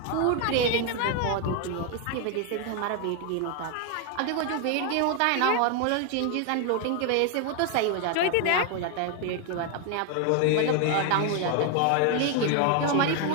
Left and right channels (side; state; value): both; different; correlation 0.01